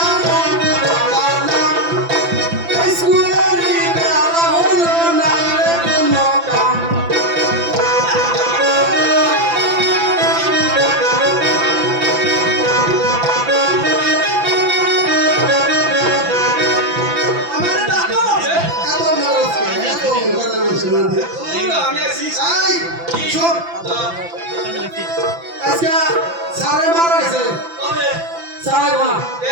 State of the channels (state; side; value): late; left; 5.9 ms